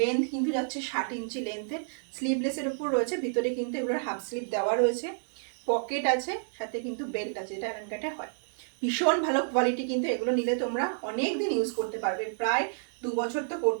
কিন্তু যাচ্ছে 60 ইঞ্চি লেন্থের, স্লিভলেসের উপর রয়েছে, ভিতরে কিন্তু এগুলোর হাফ স্লিভ দেওয়া রয়েছে, পকেট আছে, সাথে কিন্তু বেল্ট আছে, যেটা অ্যালাইন কাটে হয়। ভীষণ ভালো কোয়ালিটি, কিন্তু এগুলো নিলে তোমরা অনেক দিন ইউজ করতে পারবে, প্রায় 2 বছর তো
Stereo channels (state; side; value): silent; left; digital silence